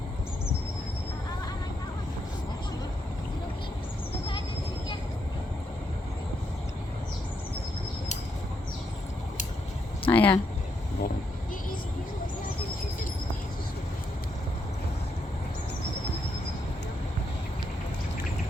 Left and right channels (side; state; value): both; normal; correlation 0.79